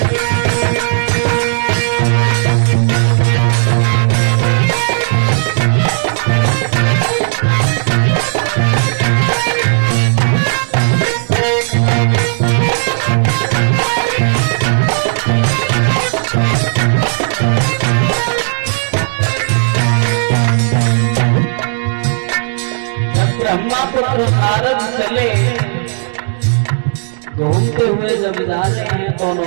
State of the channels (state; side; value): silent; left; digital silence